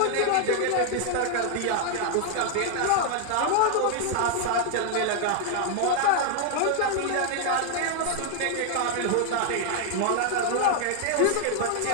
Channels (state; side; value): different; both; correlation 0.00